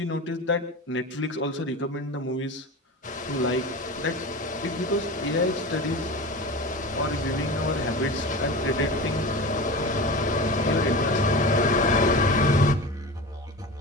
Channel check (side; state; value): both; normal; correlation 0.30